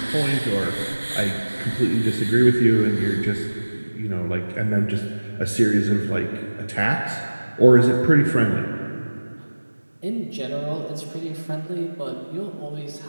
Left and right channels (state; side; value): inverted; both; correlation -1.00